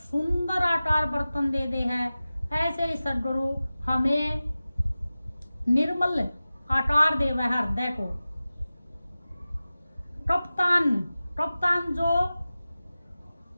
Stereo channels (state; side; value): inverted; both; correlation -0.96